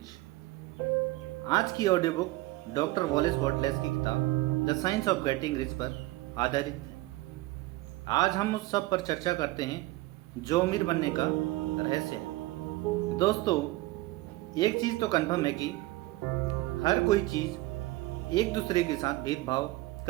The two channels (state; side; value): quieter; left; 19.0 dB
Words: आज की ऑडियो बुक डॉक्टर वॉलेस बॉटलेस की किताब the science of getting rich पर आधारित है। आज हम उस सब पर चर्चा करते हैं जो अमीर बनने का रहस्य है। दोस्तों, एक चीज़ तो कन्फर्म है कि हर कोई चीज़ एक दूसरे के साथ भेदभाव